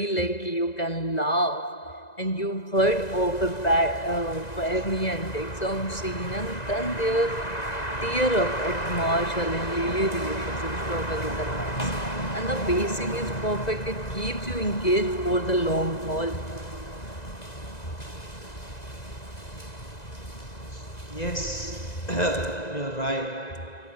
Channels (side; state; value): right; late; 2.0 ms